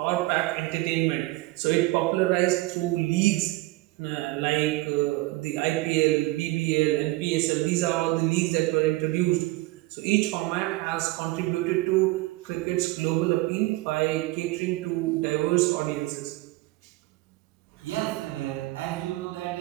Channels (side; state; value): left; quieter; 20.3 dB